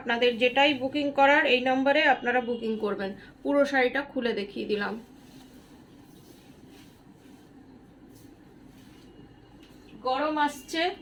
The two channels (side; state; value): both; identical; correlation 1.00